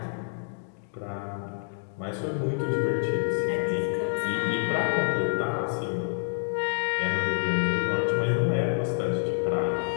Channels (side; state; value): right; silent; digital silence